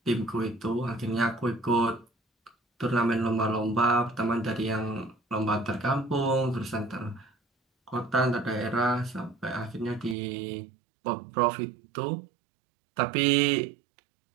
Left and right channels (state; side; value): drops out; left; at 10.2 s